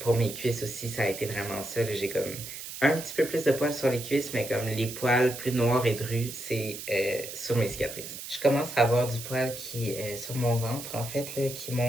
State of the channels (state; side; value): noise; right; hiss, 10 dB below the sound